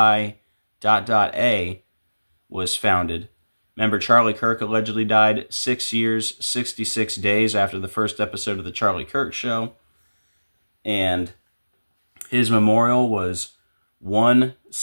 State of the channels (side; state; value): both; inverted; correlation -1.00